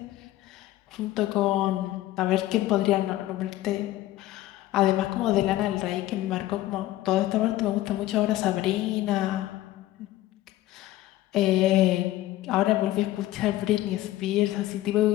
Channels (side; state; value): right; quieter; 15.4 dB